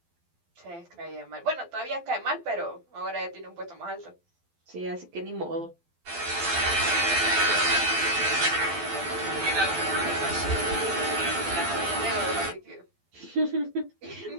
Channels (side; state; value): left; late; 12 ms